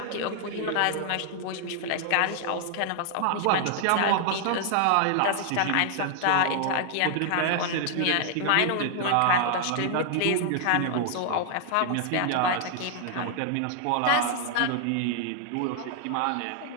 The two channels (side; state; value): both; different; correlation 0.00